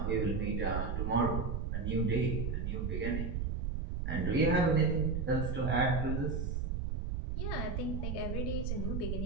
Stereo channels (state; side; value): noise; right; rumble, 1 dB below the sound